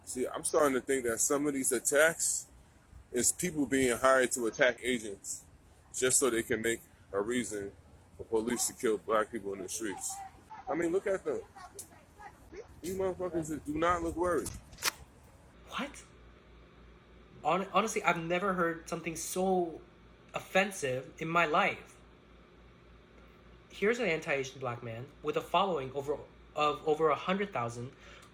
See, I'm starting to think that some of these attacks is people being hired to attack Asians just so they can make a reason for police to kill black people in the streets. I mean, look at them. These motherfuckers that do not look worried. What? Honestly, I've never heard something so offensive in my life. Here's an anti-Asian black man with a following of over 100,000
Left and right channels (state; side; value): identical; both; correlation 1.00